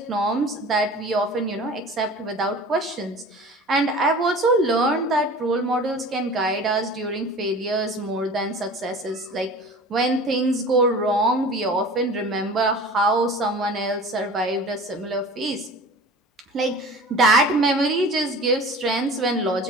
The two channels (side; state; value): both; normal; correlation 0.40